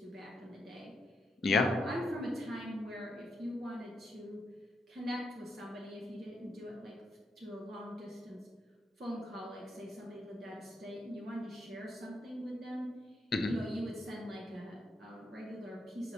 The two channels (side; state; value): both; normal; correlation 0.80